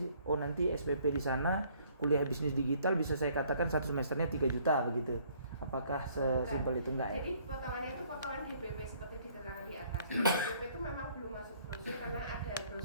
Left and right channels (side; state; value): both; inverted; correlation -0.61